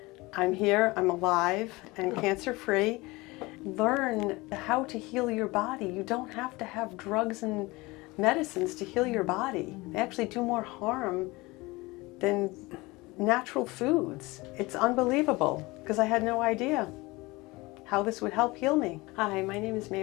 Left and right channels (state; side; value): quieter; right; 22.6 dB